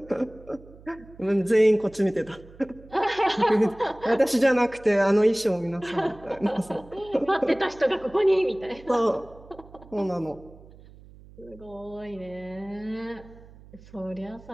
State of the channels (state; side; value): noise; right; hum, 22 dB below the sound